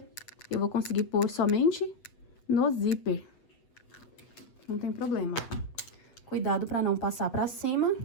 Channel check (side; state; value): right; late; 8.1 ms